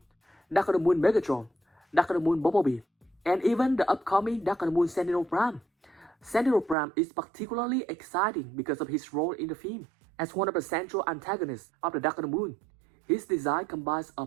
Dark of the Moon Megatron, Dark of the Moon Bumblebee, and even the upcoming Dark of the Moon Sentinel Prime. Sentinel Prime is particularly exciting because of his role in the film. As one of the central antagonists of the Dark of the Moon, his design combines a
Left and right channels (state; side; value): drops out; left; at 6.8 s